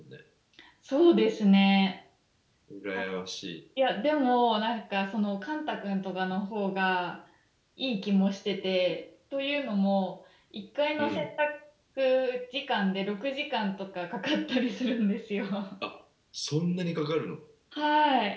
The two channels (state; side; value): identical; both; correlation 1.00